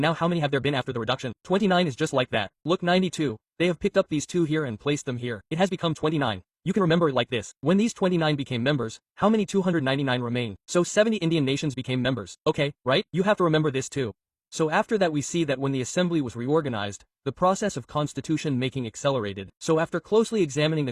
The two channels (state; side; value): identical; both; correlation 1.00